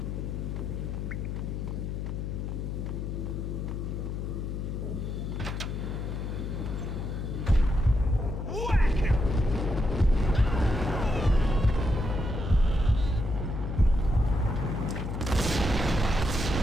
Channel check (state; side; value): noise; left; hum, 4 dB below the sound